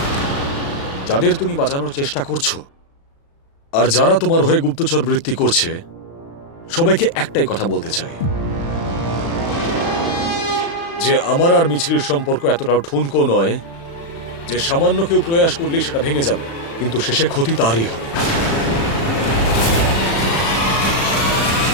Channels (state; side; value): late; right; 36 ms